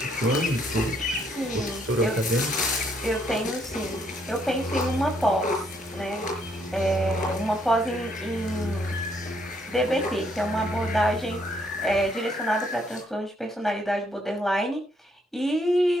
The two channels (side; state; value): both; normal; correlation 0.71